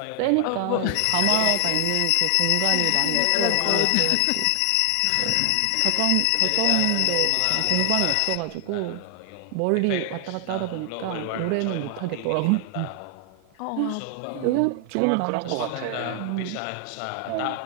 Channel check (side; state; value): both; different; correlation 0.00